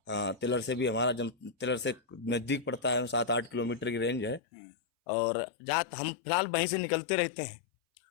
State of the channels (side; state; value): right; drops out; at 4.4 s